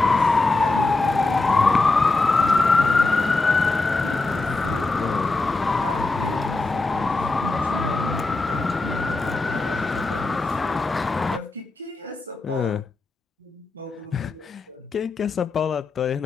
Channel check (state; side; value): quieter; right; 3.5 dB